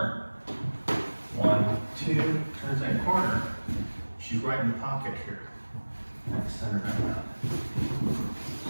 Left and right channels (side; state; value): both; inverted; correlation -1.00